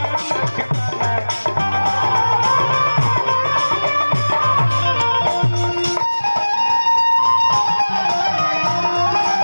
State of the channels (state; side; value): inverted; both; correlation -1.00